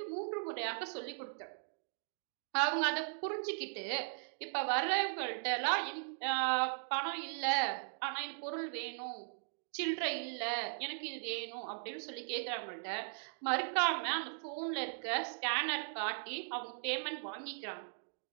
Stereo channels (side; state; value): left; silent; digital silence